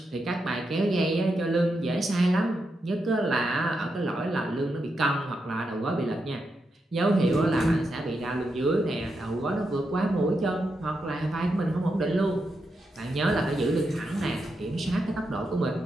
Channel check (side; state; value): both; normal; correlation 0.85